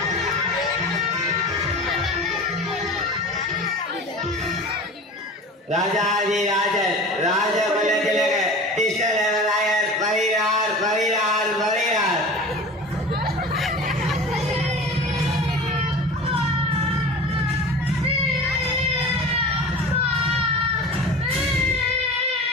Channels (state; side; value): normal; both; correlation 0.36